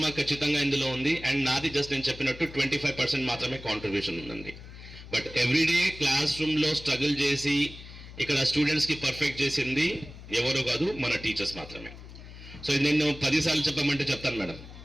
ఖచ్చితంగా ఇందులో ఉంది. అండ్ నాది జస్ట్ నేను చెప్పినట్టు 25% మాత్రమే కాంట్రిబ్యూషన్ ఉందండి. బట్ ఎవ్రీడే క్లాస్ రూమ్లో స్ట్రగుల్ చేసి ఇక్కడ స్టూడెంట్స్కి పర్ఫెక్ట్ చేసింది ఎవరో కాదు, మన టీచర్స్ మాత్రమే. సో నేను 10 సార్లు చెప్పమంటే చెప్తాను మేడం,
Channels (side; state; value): left; noise; hum, 15 dB below the sound